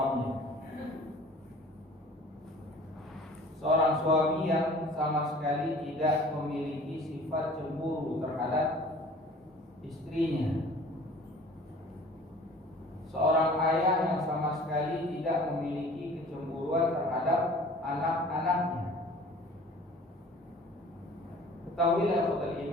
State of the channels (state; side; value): normal; both; correlation 0.47